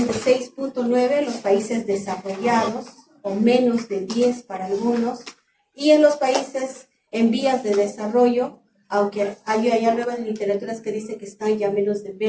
de 6.9 en los países desarrollados, o menos de 10 para algunos, y en los países en vías de desarrollo, aunque hay nuevas literaturas que dicen que están ya menos de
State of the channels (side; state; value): both; identical; correlation 1.00